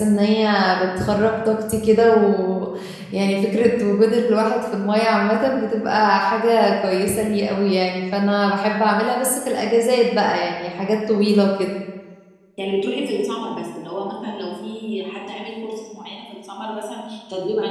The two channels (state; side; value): identical; both; correlation 1.00